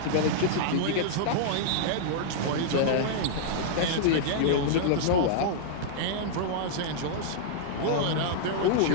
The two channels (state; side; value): different; both; correlation -0.02